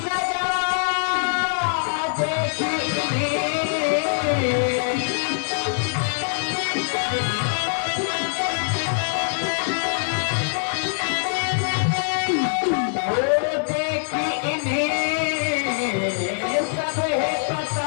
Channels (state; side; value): silent; right; digital silence